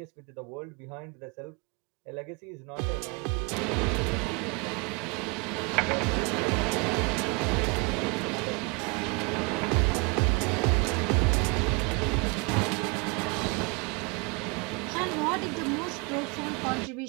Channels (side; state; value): left; quieter; 31.0 dB